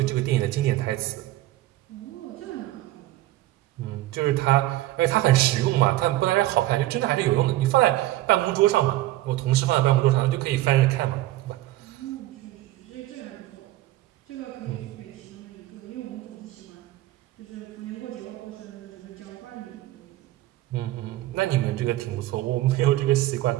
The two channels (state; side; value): quieter; left; 16.2 dB